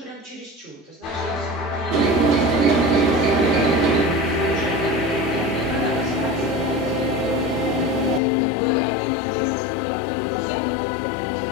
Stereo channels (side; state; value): right; drops out; at 8.2 s